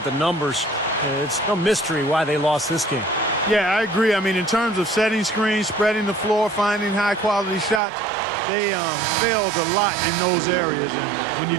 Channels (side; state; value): left; drops out; at 7.8 s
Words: the numbers, it's no mystery why they lost this game. Yeah, I agree. I mean, in terms of setting screens, spreading the floor, finding high-quality shots, they failed a lot in those areas. And when